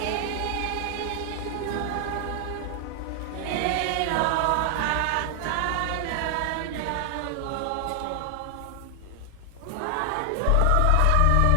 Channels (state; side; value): different; both; correlation 0.00